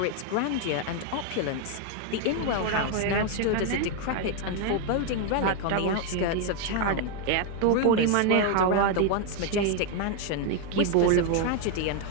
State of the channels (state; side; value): different; both; correlation 0.01